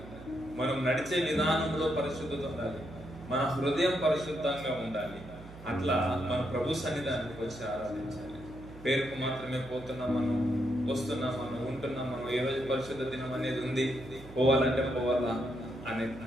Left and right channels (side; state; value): right; noise; hum, 17 dB below the sound